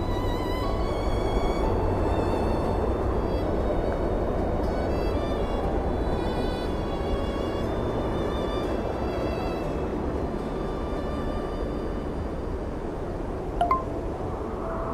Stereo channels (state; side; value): identical; both; correlation 1.00